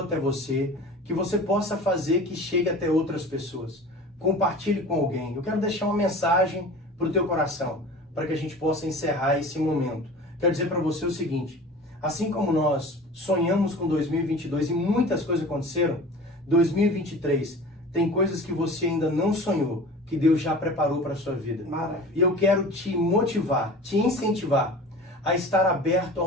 você, que você possa fazer que chegue até outras pessoas. Compartilhe com alguém. Eu quero deixar uma mensagem para o teu coração, para que a gente possa encerrar esse momento. Quero dizer para você o seguinte, assim como nós sonhamos com 2022 e muitas coisas aconteceram, 2023 tem coisas que você ainda não sonhou, que Deus já preparou para a sua vida. Maravilha. E eu quero te motivar, te incentivar a estar aberto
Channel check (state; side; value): normal; both; correlation 0.39